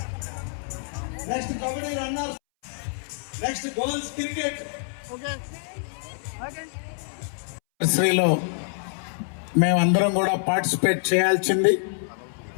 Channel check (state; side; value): silent; right; 61 dB below the other